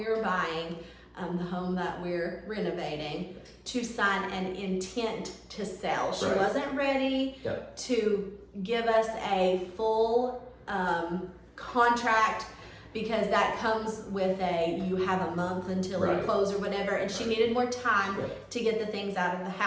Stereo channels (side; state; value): both; identical; correlation 1.00